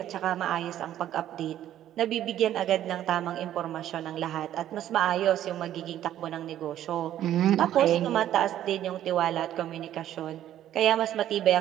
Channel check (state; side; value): quieter; left; 11.9 dB